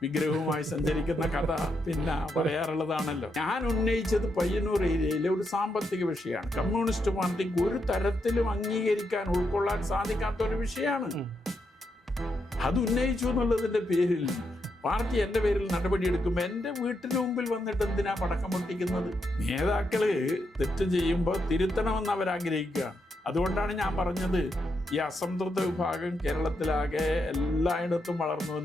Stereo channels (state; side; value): normal; both; correlation 0.82